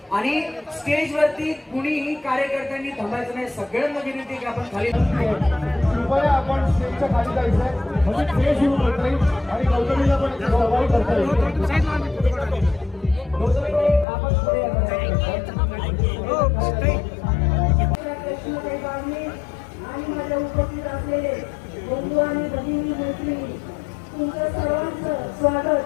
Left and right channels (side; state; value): right; drops out; at 14.1 s